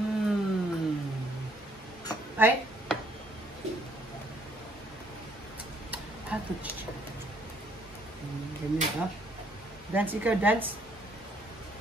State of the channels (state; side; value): normal; both; correlation 0.66